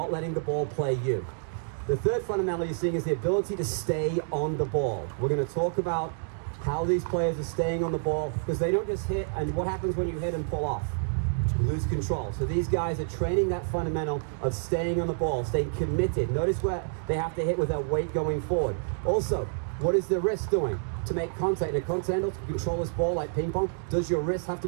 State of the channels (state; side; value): silent; left; digital silence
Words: letting the ball play you. The third fundamental you're seeing is the ability to stay on the ball. We're going to talk about how these players are staying on the ball, because they don't just hit, and what happens when you hit and pull off? You lose control. So these guys are training that fundamental of staying on the ball, staying committed. Notice where they have to hit with their weight going forward. Also, what is the wrist doing to make contact? In a continental, to control this ball like ping pong, does your wrist have